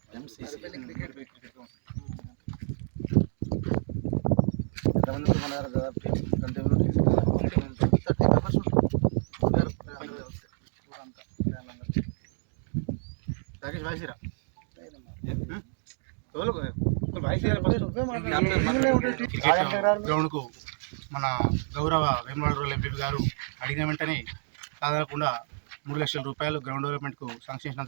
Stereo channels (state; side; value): silent; left; digital silence